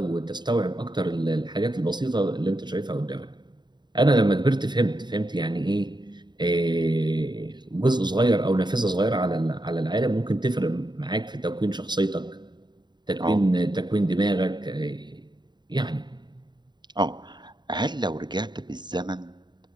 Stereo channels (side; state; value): left; late; 0.21 ms